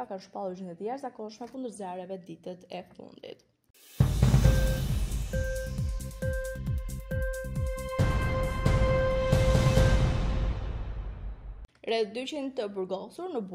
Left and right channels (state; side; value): identical; both; correlation 1.00